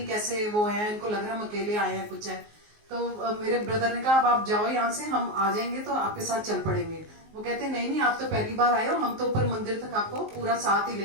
कैसे वो है, इनको लग रहा है हम अकेले आए हैं कुछ है। तो मेरे ब्रदर ने कहा अब आप जाओ यहाँ से, हम आ जाएंगे तो आपके साथ चल पड़ेंगे। वो कहते नहीं नहीं आप तो पहली बार आए हो, हम तो ऊपर मंदिर तक आपको पूरा साथ ही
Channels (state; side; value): late; left; 19 ms